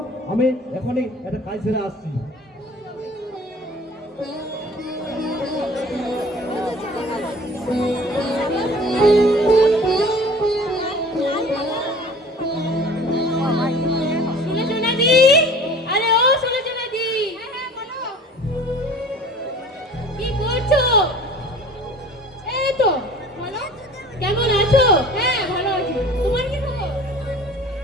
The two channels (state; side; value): normal; both; correlation 0.45